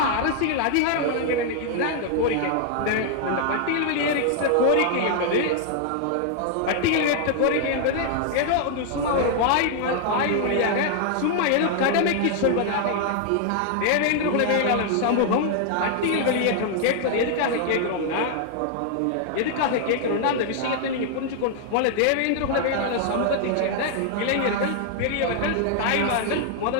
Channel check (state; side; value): different; both; correlation 0.00